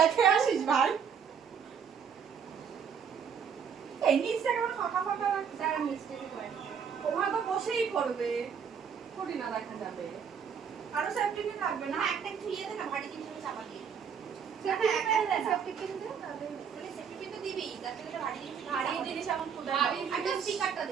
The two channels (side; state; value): left; quieter; 7.2 dB